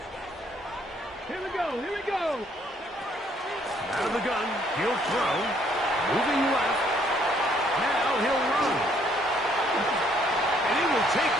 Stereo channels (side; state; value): both; normal; correlation 0.66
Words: Here we go. Out of the gun, he'll throw. Moving left. Now he'll run. And he will take